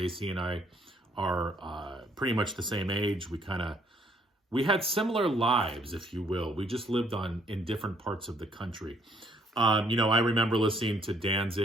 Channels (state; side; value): normal; both; correlation 0.66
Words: and I are pretty much the same age. We had similar lives, if you will. We just lived in different parts of the country. I remember listening to